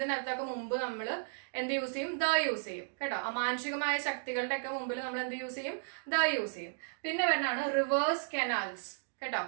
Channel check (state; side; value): silent; left; digital silence